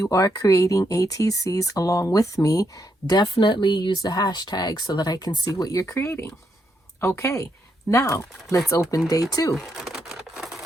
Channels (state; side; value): normal; both; correlation 0.79